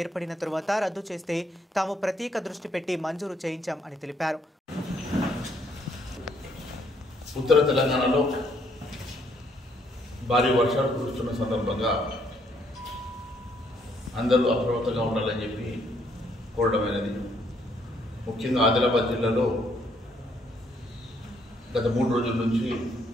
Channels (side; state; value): both; normal; correlation 0.70